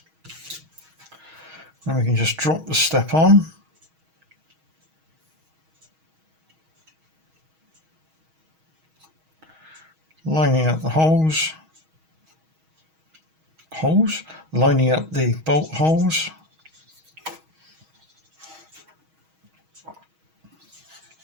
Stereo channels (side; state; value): left; late; 6.3 ms